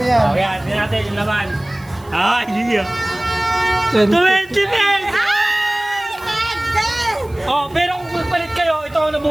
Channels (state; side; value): noise; right; hiss, 27 dB below the sound